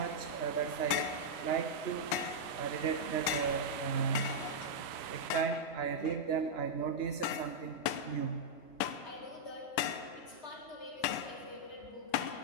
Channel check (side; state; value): right; late; 3.1 ms